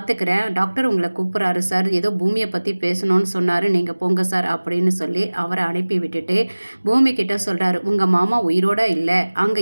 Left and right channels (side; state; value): both; inverted; correlation -1.00